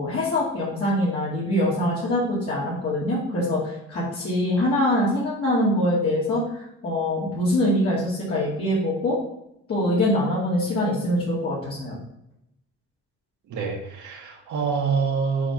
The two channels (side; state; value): both; normal; correlation 0.36